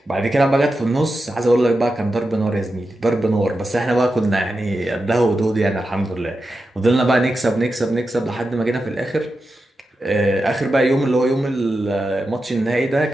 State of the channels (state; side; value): normal; both; correlation 0.90